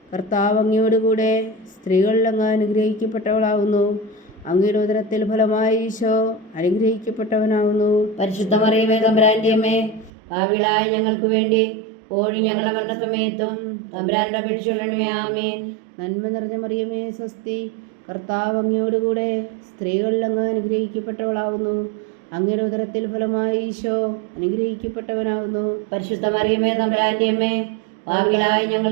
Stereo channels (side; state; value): left; drops out; at 10.1 s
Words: കർത്താവ് അങ്ങയോടുകൂടെ സ്ത്രീകളിൽ അങ്ങ് അനുഗ്രഹിക്കപ്പെട്ടവളാവുന്നു. അങ്ങയുടെ ഉദരത്തിൽ ഫലമായി ഈശോ അനുഗ്രഹിക്കപ്പെട്ടവനാവുന്നു. പരിശുദ്ധ മറിയമേ തമ്പുരാന്റെ അമ്മേ, പാപികളായ ഞങ്ങൾക്ക് വേണ്ടി ഇപ്പോഴും ഞങ്ങളുടെ മരണസമയത്തും തമ്പുരാനോട് അപേക്ഷിച്ചുകൊള്ളണമേ. ആമേൻ. നന്മ നിറഞ്ഞ മറിയമേ സ്വസ്തി, കർത്താവ് അങ്ങയോടുകൂടെ സ്ത്രീകളിൽ അങ്ങ് അനുഗ്രഹിക്കപ്പെട്ടവളാവുന്നു. അങ്ങയുടെ ഉദരത്തിൽ ഫലമായി ഈശോ അനുഗ്രഹിക്കപ്പെട്ടവനാവുന്നു. പരിശുദ്ധ മറിയമേ തമ്പുരാന്റെ അമ്മേ, പാപികളായ